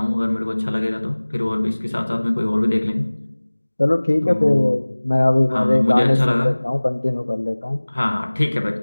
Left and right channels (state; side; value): inverted; both; correlation -1.00